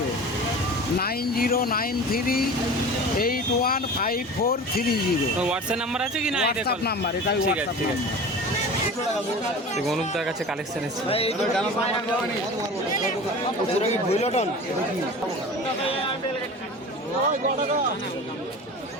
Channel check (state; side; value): normal; both; correlation 0.36